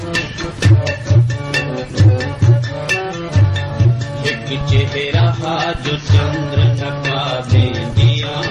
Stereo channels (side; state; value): both; identical; correlation 1.00